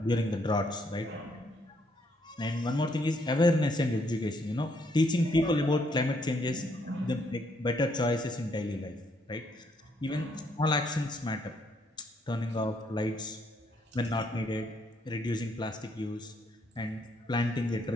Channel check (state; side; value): normal; both; correlation 0.71